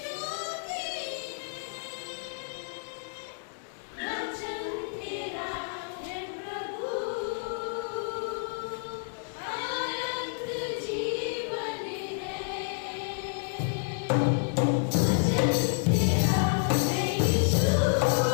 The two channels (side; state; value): right; silent; digital silence